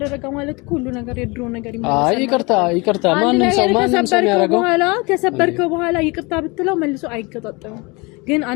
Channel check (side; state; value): right; quieter; 26.7 dB